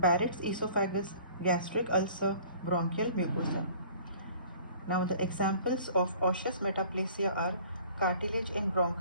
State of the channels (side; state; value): both; inverted; correlation -0.50